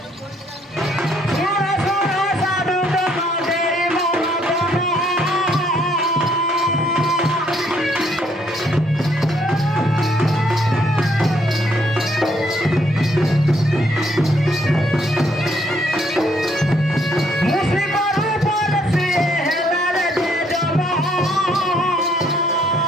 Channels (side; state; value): both; normal; correlation 0.68